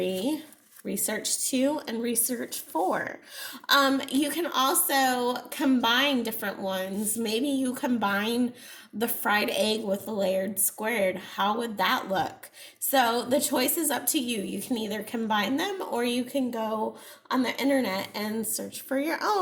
Research 2, and Research 4. You can also combine different ones. Maybe you combine the fried egg with the layered squared. How would that look? So the choice is up to you. You can either combine them, or you can go on the internet and search for your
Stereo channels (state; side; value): identical; both; correlation 1.00